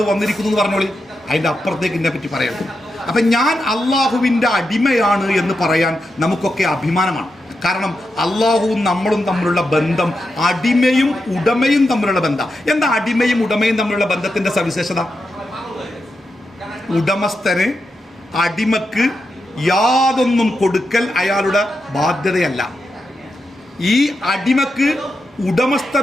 വന്നിരിക്കുന്നു എന്ന് പറഞ്ഞോളി. അതിൻ്റെ അപ്പുറത്തേക്ക് എന്നെ പറ്റി പറയരുത്. അപ്പം ഞാൻ അള്ളാഹുവിൻ്റെ അടിമയാണ് എന്ന് പറയാൻ നമുക്കൊക്കെ അഭിമാനമാണ്. കാരണം അള്ളാഹുവും നമ്മളും തമ്മിലുള്ള ബന്ധം അടിമയും ഉടമയും തമ്മിലുള്ള ബന്ധം. എന്താ അടിമയും ഉടമയും തമ്മിലുള്ള ബന്ധത്തിന്റെ സവിശേഷത? ഉടമസ്ഥന് അടിമക്ക് യാതൊന്നും കൊടുക്കൽ അയാളുടെ ബാധ്യതയല്ല. ഈ അടിമക്ക്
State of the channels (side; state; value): both; normal; correlation 0.87